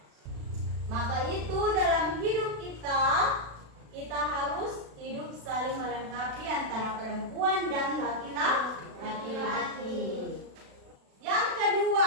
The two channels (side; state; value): left; late; 36 ms